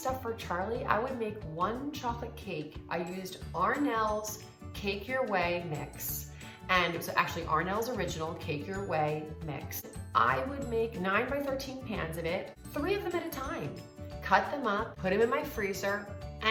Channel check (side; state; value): both; identical; correlation 1.00